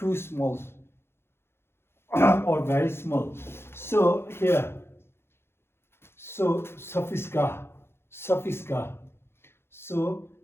small or very small. So here, so suffix ga. So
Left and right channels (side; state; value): right; late; 0.12 ms